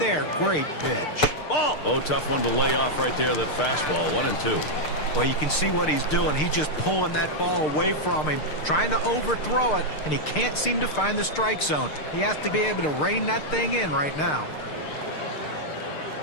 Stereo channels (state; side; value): late; right; 6.6 ms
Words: Great pitch. Ball. Oh, tough one to lay off right there, that fastball. 1-2. Well, you can see what he's doing. He's just pulling that ball away from him, trying to overthrow it, and he can't seem to find the strike zone. He has to be able to rein that thing in right now.